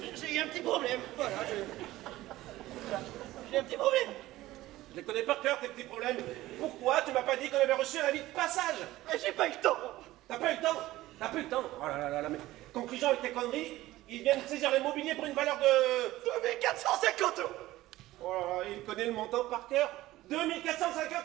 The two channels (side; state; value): left; quieter; 16.6 dB